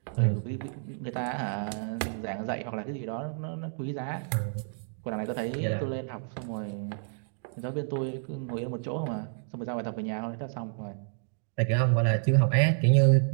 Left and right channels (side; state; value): left; silent; digital silence